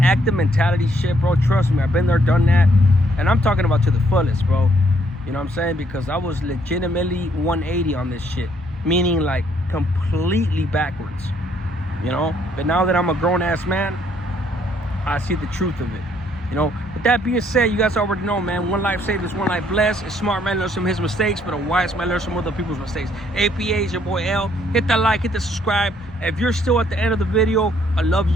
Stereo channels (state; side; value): normal; both; correlation 0.68